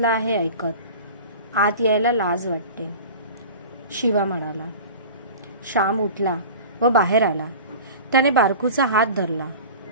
आहे ऐकत. आत यायला लाज वाटते, शिवा म्हणाला. श्याम उठला व बाहेर आला. त्याने बारकूचा हात धरला.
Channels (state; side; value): inverted; both; correlation -0.37